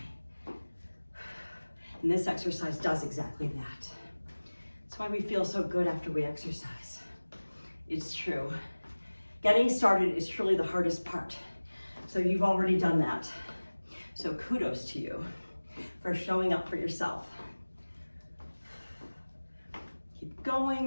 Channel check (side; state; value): both; inverted; correlation -1.00